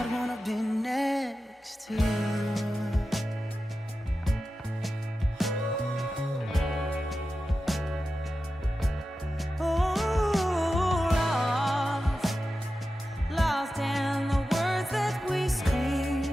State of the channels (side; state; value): both; normal; correlation 0.92